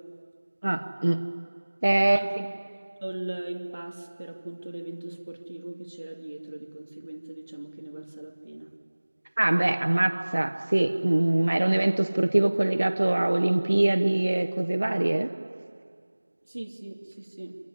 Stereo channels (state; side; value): inverted; both; correlation -1.00